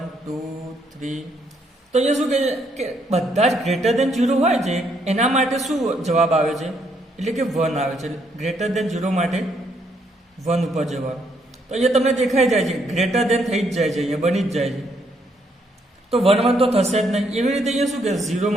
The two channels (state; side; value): normal; both; correlation 0.72